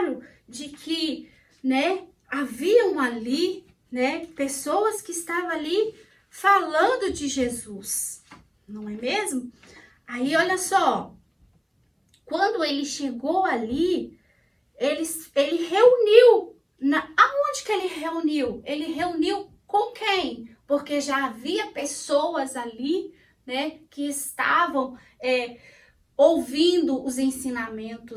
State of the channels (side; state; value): both; identical; correlation 1.00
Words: de que, né, haviam ali, né, pessoas que estavam ali falando de Jesus, não é mesmo? Aí, olha só, quando ele chegou ali, ele reuniu, aonde que ele reuniu? Ele reuniu com quem? Porque já havia pessoas ali, né, que estavam ouvindo os